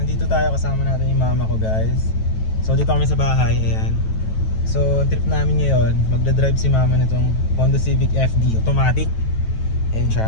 tayo kasama natin yung mama ko guys. So dito kami sa bahay, ayan. So trip namin ngayon, magdadrive si mama nitong Honda Civic FD automatic. Ayan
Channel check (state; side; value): late; right; 9.2 ms